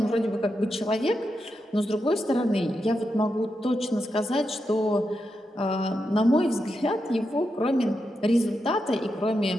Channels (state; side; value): normal; both; correlation 0.86